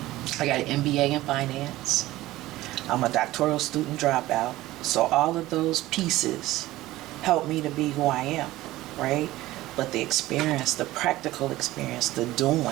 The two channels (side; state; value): left; quieter; 17.0 dB